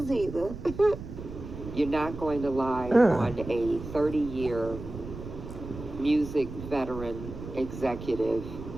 either. You're not going to lie on a 30-year music veteran executive,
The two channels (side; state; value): right; noise; rumble, 10 dB below the sound